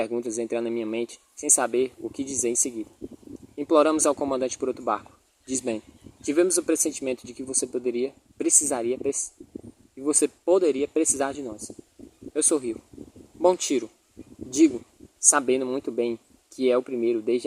entrando na minha mente, sem saber o que dizer em seguida. Imploramos ao comandante por outro barco, diz Ben. Tivemos o pressentimento de que você poderia precisar de nós. Eu sorrio. Bom tiro. Digo, sabendo muito bem que é o primeiro desde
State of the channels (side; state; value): both; identical; correlation 1.00